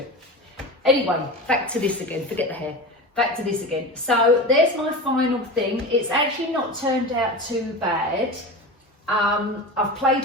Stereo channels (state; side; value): normal; both; correlation 0.28